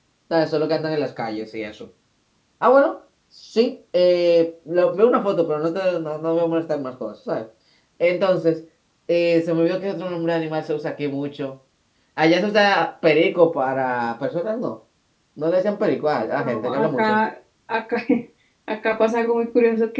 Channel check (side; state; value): both; identical; correlation 1.00